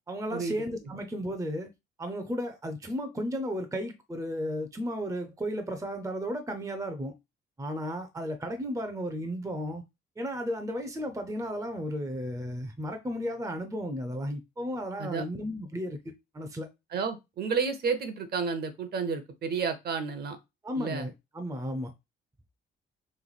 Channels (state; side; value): normal; both; correlation 0.55